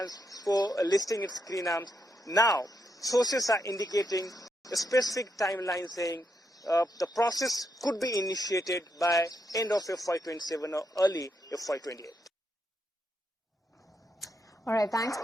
for listing its green arms. Now, sources are indicating a specific timeline, saying the process could be initiated by end of FY27 or early FY28. All right, thanks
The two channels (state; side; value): normal; both; correlation 0.80